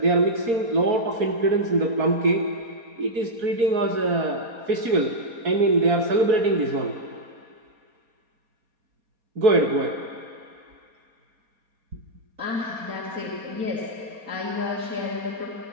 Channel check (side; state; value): left; late; 4.3 ms